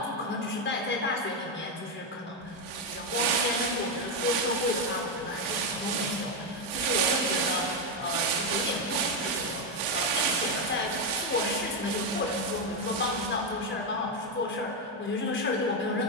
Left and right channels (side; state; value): both; normal; correlation 0.06